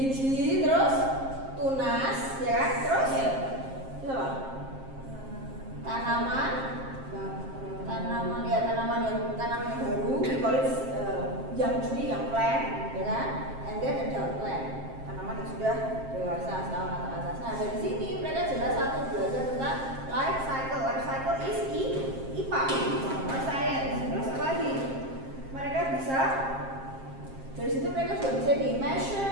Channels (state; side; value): late; left; 7.5 ms